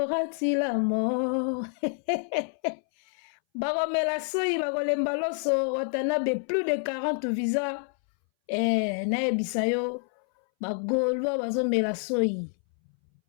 Tilamo bakomela soyi bakolemba loso watanabe plus de 40 visa naebisayo bagolwa bazomela soyi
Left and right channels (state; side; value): silent; right; 60 dB below the other